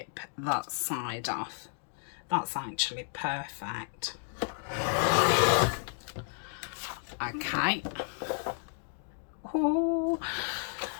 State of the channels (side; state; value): right; silent; 56 dB below the other